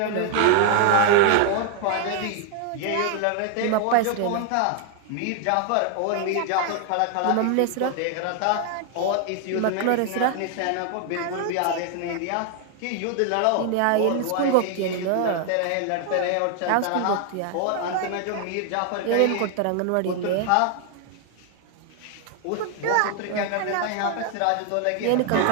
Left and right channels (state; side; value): different; both; correlation 0.00